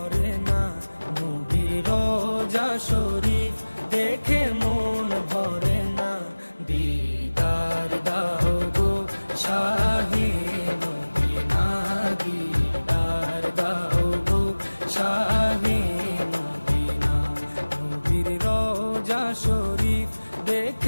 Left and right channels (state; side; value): inverted; both; correlation -1.00